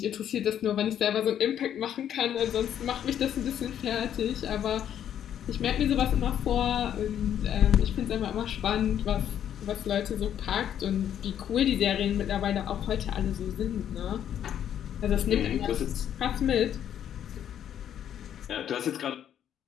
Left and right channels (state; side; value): quieter; right; 9.9 dB